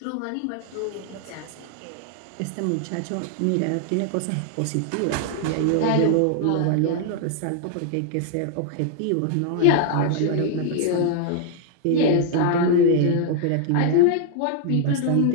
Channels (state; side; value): different; both; correlation 0.00